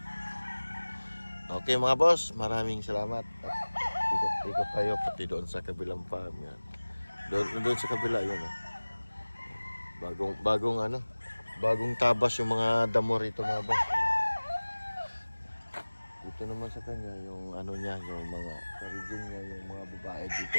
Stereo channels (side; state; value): both; inverted; correlation -1.00